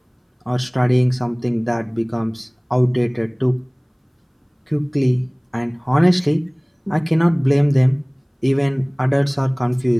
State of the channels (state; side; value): identical; both; correlation 1.00